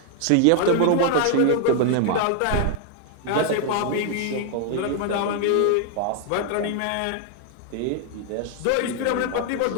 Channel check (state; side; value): different; both; correlation 0.00